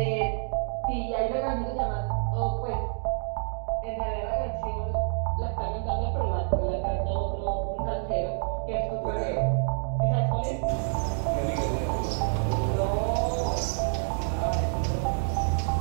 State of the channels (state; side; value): silent; left; digital silence